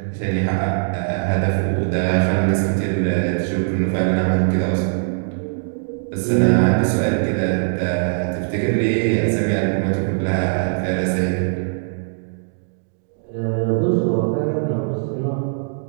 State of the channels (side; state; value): left; silent; digital silence